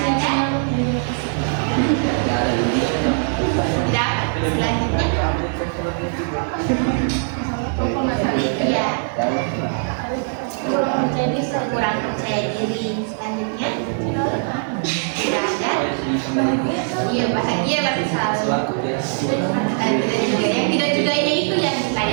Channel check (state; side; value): silent; left; 60 dB below the other